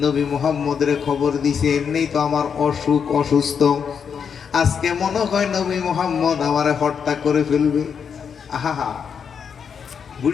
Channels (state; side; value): quieter; right; 6.9 dB